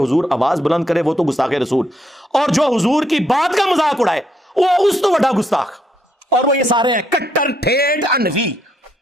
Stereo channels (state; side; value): normal; both; correlation 0.74